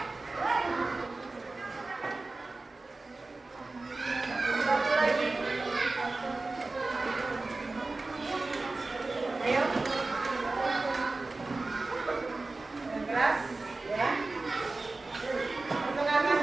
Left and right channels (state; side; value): quieter; left; 3.4 dB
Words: Satu lagi. Ayo. Yang keras, ya. Perkenalkan